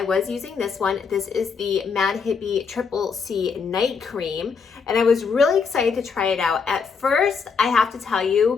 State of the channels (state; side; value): quieter; right; 5.6 dB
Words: was using this one. This is the Mad Hippie Triple C Night Cream, and I was really excited to try it out. At first, I have to tell